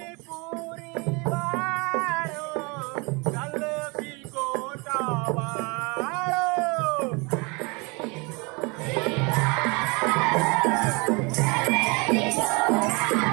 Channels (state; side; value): quieter; left; 29.2 dB